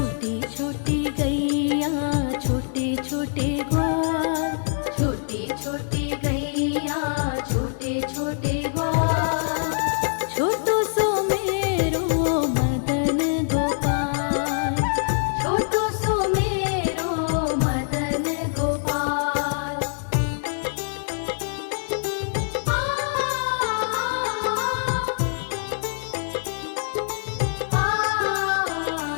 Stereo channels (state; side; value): silent; right; digital silence